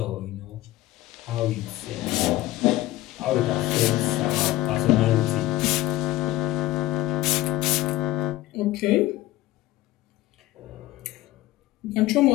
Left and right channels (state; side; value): quieter; right; 16.9 dB